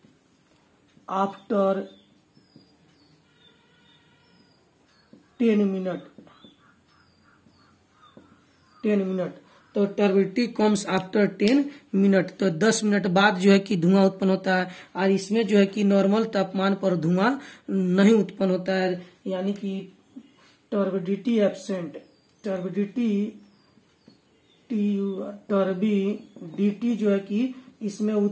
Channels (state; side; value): identical; both; correlation 1.00